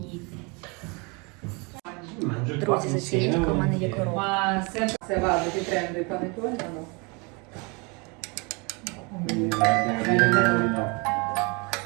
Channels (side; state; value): left; quieter; 30.0 dB